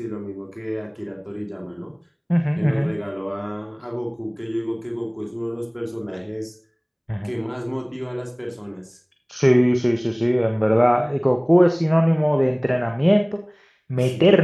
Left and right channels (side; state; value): both; identical; correlation 1.00